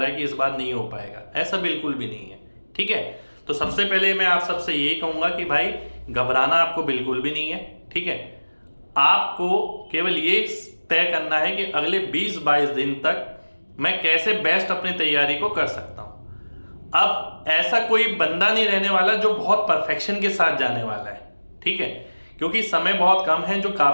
है कि इस बार नहीं हो पाएगा। ऐसा बिल्कुल भी नहीं है। ठीक है, तो सबसे पहले मैं आप सबसे यही कहूँगा कि भाई घबराना आपको बिल्कुल भी नहीं है। ठीक है, आपको केवल ये तय करना है कि अगले 20-22 दिन तक मैं कैसे बेस्ट अपनी तैयारी को कर सकता हूँ। अब ऐसा कोई बंदा नहीं रहने वाला जो बहुत परफेक्शन के साथ जाने वाला है। ठीक है, क्योंकि समय बहुत कम है। जो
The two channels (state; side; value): inverted; both; correlation -1.00